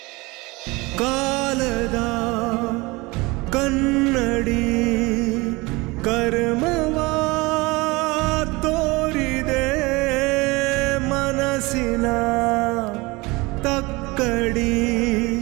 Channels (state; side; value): quieter; left; 23.8 dB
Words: ಕಾಲದ ಕನ್ನಡಿ ಕರ್ಮವ ತೋರಿದೆ ಮನಸ್ಸಿನ ತಕ್ಕಡಿ